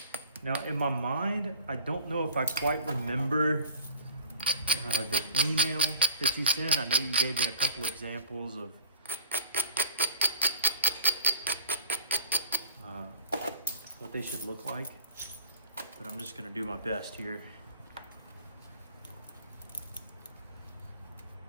Now, in my mind, I don't know if I quite remember the email that you sent. I know you gave me a couple examples of what they should look like, but I'm just gonna do my best here.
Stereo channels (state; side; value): inverted; both; correlation -0.49